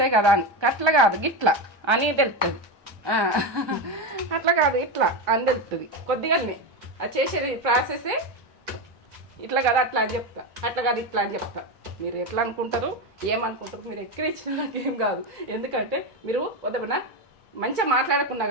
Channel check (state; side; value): normal; both; correlation 0.15